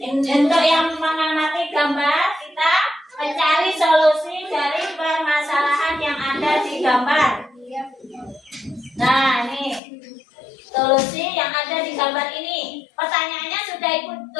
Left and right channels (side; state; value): right; drops out; at 9.8 s